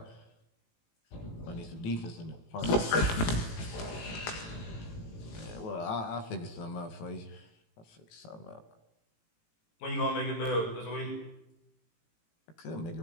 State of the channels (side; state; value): right; late; 18 ms